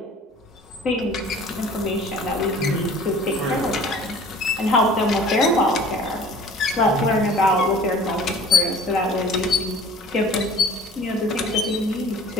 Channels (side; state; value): both; normal; correlation 0.47